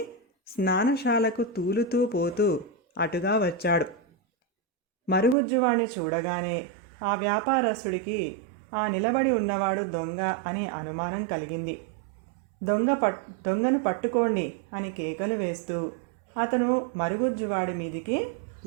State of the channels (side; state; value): left; drops out; at 5.4 s